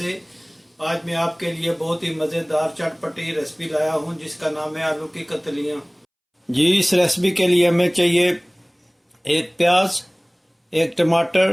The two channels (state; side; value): identical; both; correlation 1.00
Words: आज मैं आपके लिए बहुत ही मज़ेदार चटपटी रेसिपी लाया हूं जिसका नाम है आलू की कतलियां। जी, इस रेसिपी के लिए हमें चाहिए एक प्याज, एक